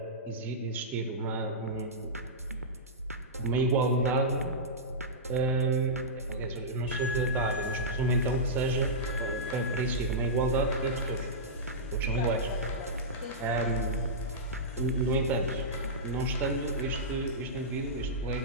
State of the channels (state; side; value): normal; both; correlation -0.14